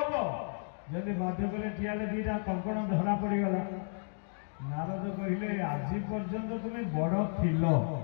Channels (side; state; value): right; silent; digital silence